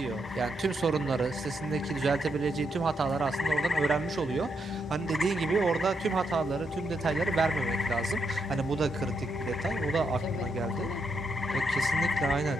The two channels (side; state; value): both; normal; correlation 0.80